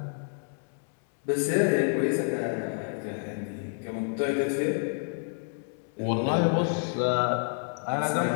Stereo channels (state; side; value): silent; right; 59 dB below the other